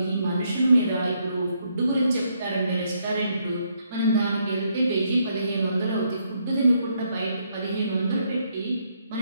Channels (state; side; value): inverted; both; correlation -0.74